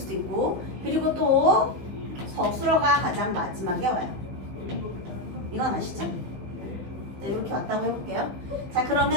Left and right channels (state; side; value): late; left; 15 ms